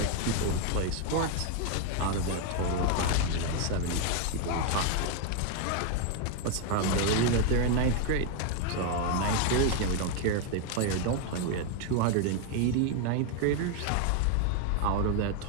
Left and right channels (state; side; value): different; both; correlation 0.01